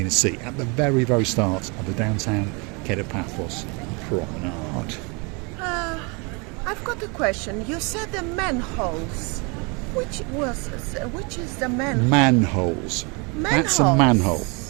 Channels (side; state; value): left; quieter; 31.0 dB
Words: Sea at the very, very start of the downtown Kato Paphos promenade. I've got a question. You said the manholes. Which is the manhole? Manholes. That's a Manholes. manhole.